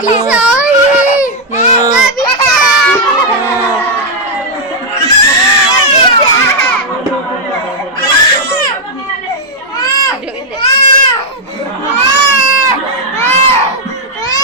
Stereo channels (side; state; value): both; normal; correlation -0.02